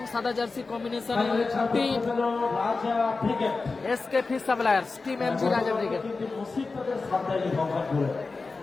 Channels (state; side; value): quieter; right; 4.0 dB